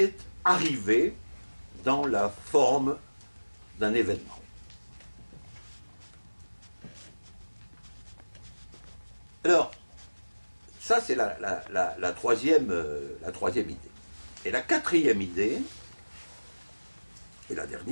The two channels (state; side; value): inverted; both; correlation -1.00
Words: arrivé dans la forme d'un événement. Alors, ça, c'est la troisième idée. Et la quatrième idée, et la